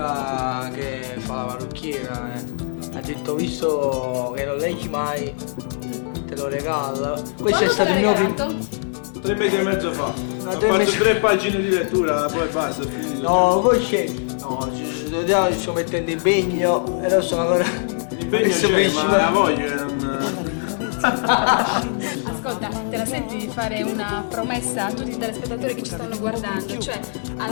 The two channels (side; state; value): right; silent; digital silence